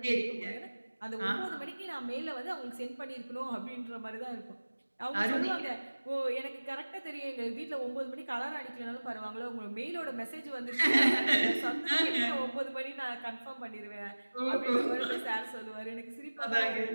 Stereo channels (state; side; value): inverted; both; correlation -1.00